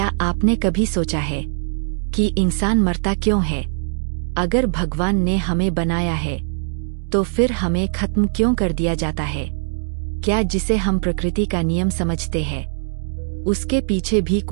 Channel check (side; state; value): left; silent; digital silence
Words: आपने कभी सोचा है कि इंसान मरता क्यों है? अगर भगवान ने हमें बनाया है तो फिर हमें खत्म क्यों कर दिया जाता है? क्या जिसे हम प्रकृति का नियम समझते हैं उसके पीछे भी